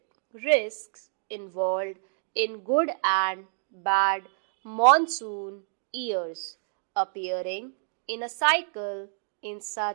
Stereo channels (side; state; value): left; silent; digital silence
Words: risks involved in good and bad monsoon years appearing in a cycle in